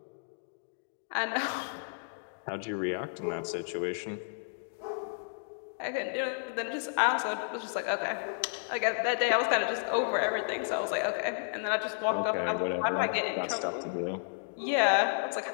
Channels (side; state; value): right; silent; digital silence